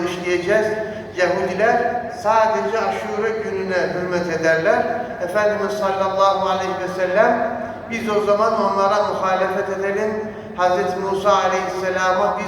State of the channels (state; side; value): identical; both; correlation 1.00